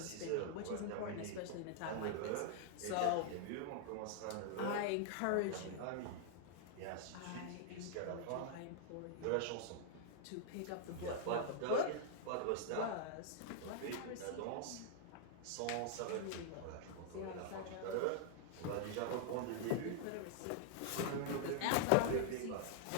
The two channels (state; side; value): different; both; correlation -0.01